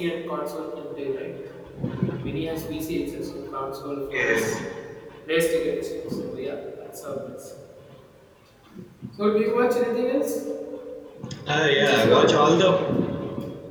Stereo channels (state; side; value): identical; both; correlation 1.00